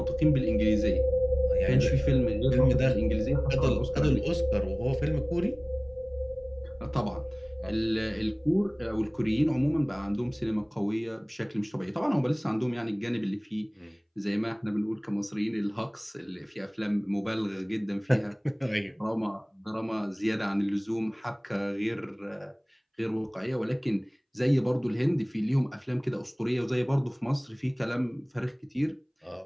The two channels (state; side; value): identical; both; correlation 1.00